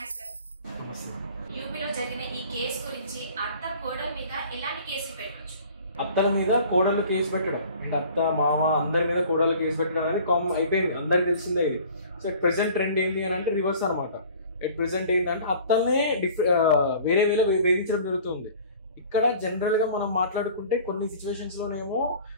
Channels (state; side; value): inverted; both; correlation -0.47